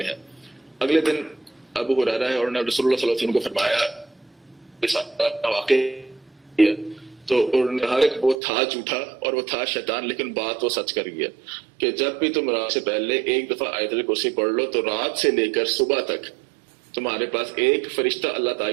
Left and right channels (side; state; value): left; drops out; at 8.3 s